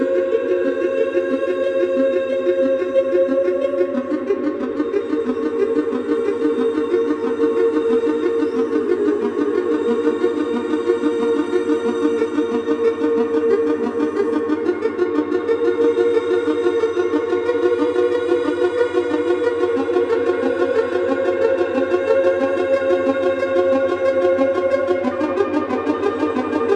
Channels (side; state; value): both; identical; correlation 1.00